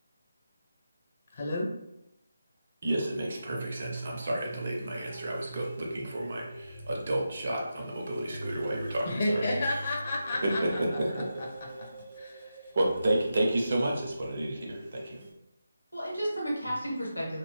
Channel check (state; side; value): inverted; both; correlation -0.88